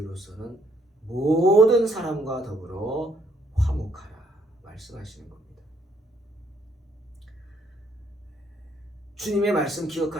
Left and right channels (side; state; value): both; normal; correlation 0.69